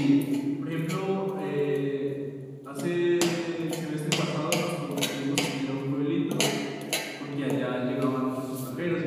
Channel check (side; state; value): both; identical; correlation 1.00